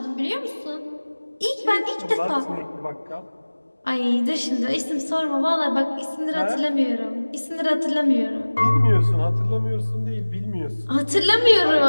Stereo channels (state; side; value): inverted; both; correlation -1.00